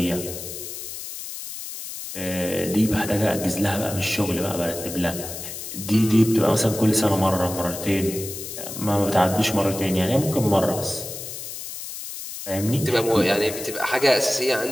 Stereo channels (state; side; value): noise; left; hiss, 9 dB below the sound